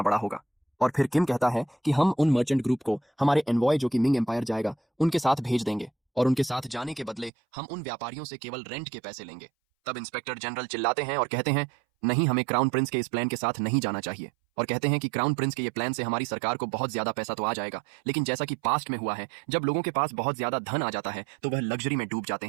बड़ा होगा। और फिर किम कहता है कि हम उन मर्चेंट ग्रुप को हमारे एनवॉय जो कि मिंग एम्पायर जाएगा उनके साथ भेज देंगे, और उनके साथ जाने के बदले हम उन व्यापारियों से केवल रेंट के पैसे लेंगे। तब इंस्पेक्टर जनरल चिल्लाते हैं और कहते हैं नहीं, हमें क्राउन प्रिंस के इस प्लान के साथ नहीं जाना चाहिए, और कहते हैं कि क्राउन प्रिंस के ये प्लान से हमारी सरकार को बहुत ज्यादा पैसा तो आ जाएगा, लेकिन जैसा कि पास्ट में हुआ है जब लोगों के पास बहुत ज्यादा धन आ जाता है तो वह लग्जरी में डूब जाते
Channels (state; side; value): drops out; left; at 7.3 s